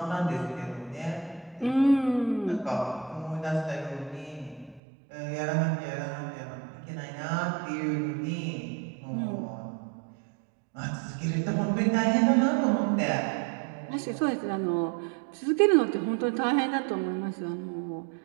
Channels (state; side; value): drops out; left; at 4.8 s